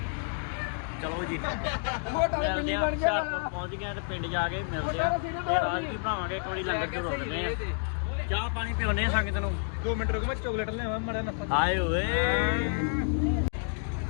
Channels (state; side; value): silent; right; 58 dB below the other